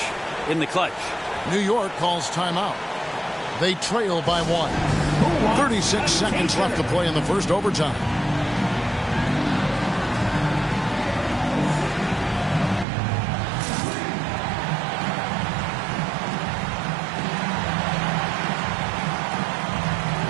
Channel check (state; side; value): drops out; left; at 12.9 s